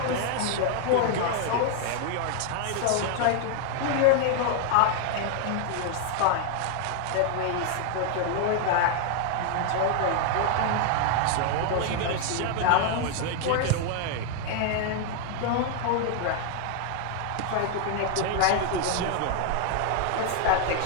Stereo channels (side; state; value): both; different; correlation 0.00